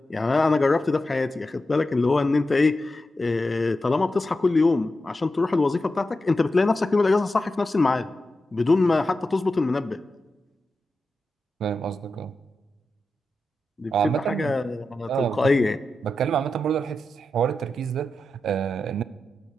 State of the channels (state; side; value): normal; both; correlation 0.90